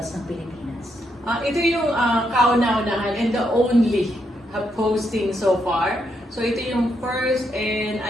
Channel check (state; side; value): normal; both; correlation 0.79